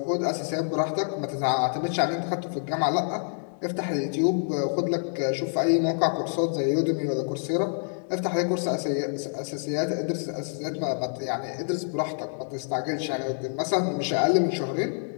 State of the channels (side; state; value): right; silent; digital silence